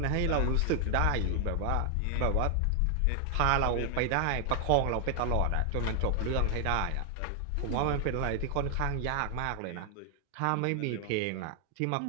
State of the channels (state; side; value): different; both; correlation 0.00